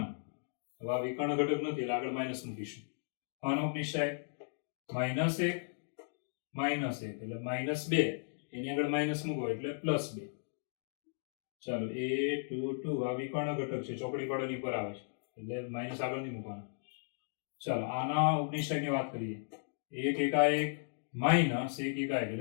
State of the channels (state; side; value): silent; right; digital silence